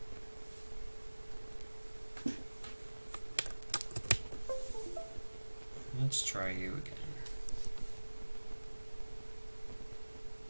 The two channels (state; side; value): inverted; both; correlation -1.00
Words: about? Let's try you again.